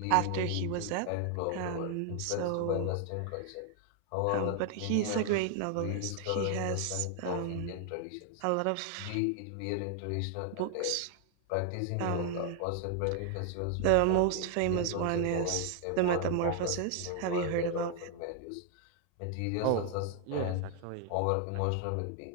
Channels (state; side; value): different; both; correlation 0.00